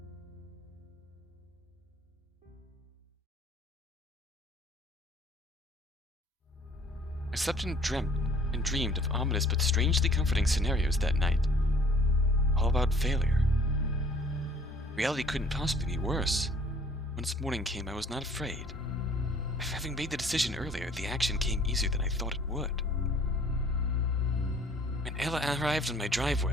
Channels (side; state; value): both; normal; correlation 0.55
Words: I slept and dreamed of ominous but strangely comforting scenarios that night. All about failure. Reality couldn't possibly be worse. Once morning came, I was not afraid. Having made the decision earlier, the action came easier than I thought it would. When Ella arrived on my